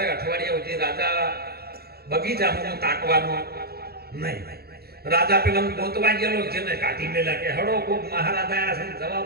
અઠવાડિયા સુધી રાજા બગીચામાં તાકવાનો નહીં રાજા પેલા ગોતવા ગયેલો જેને કાઢી મેલા કે હડો કોક મહારાજ આયા છે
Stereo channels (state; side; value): late; left; 0.46 ms